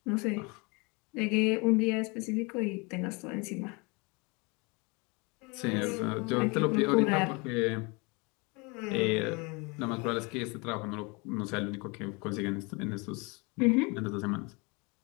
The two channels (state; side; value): quieter; right; 28.9 dB